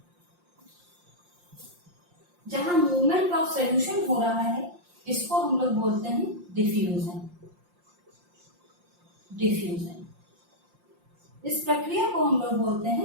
मूवमेंट ऑफ सोल्यूशन हो रहा है, इसको हम लोग बोलते हैं डिफ्यूजन। डिफ्यूजन, इस प्रक्रिया को हम लोग बोलते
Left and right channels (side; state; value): left; late; 5.7 ms